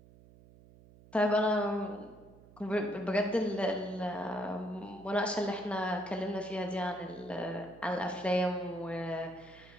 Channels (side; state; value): right; noise; hum, 23 dB below the sound